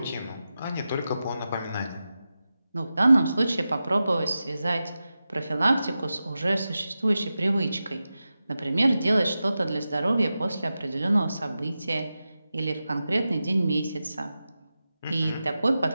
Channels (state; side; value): inverted; both; correlation -0.93